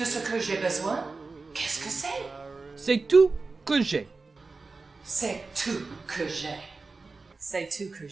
ce que j'ai besoin? Qu'est-ce que c'est? C'est tout que j'ai. C'est tout que j'ai. C'est tout que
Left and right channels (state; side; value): quieter; left; 3.9 dB